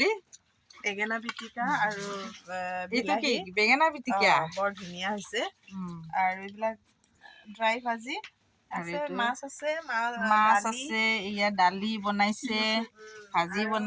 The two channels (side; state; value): both; identical; correlation 1.00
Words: বেঙেনা পিটিকা আৰু এইটো কি বিলাহী বেঙেনা পিটিকা বৰ ধুনীয়া হৈছে। আৰু এইবিলাক ড্ৰাই ভাজি আৰু আছে, এইটো মাছ আছে, মাছ দালি আছে, এয়া দালি বনাইছে, ভাজি